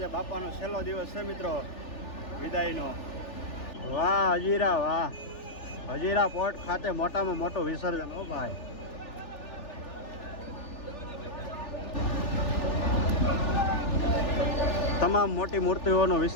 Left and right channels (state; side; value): late; right; 3.4 ms